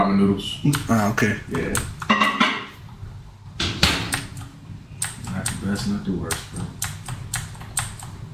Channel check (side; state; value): both; identical; correlation 1.00